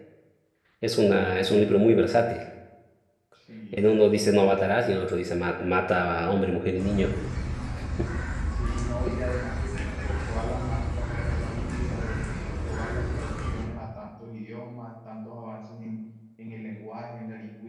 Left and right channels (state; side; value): identical; both; correlation 1.00